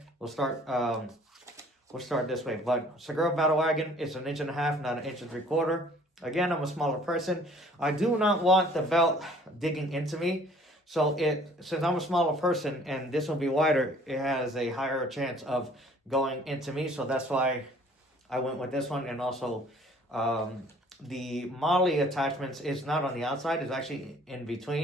We'll start this way. But Segura Battle Wagon is 1.5 inches, not 1 3/4 inches. Again, I'm a smaller person. I do not want the belt digging into me. So, since I'm a smaller person and this will be wider, it has a higher chance of going into me. So, that's why I went with this one. And also, the Molly attachments is not on the outside, it's actually in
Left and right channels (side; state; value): both; normal; correlation 0.55